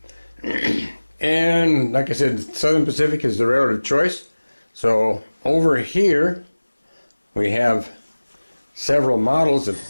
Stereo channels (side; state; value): both; inverted; correlation -1.00